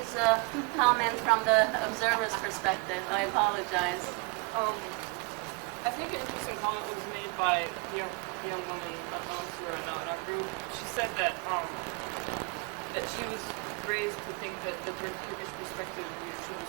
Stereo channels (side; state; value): left; quieter; 31.0 dB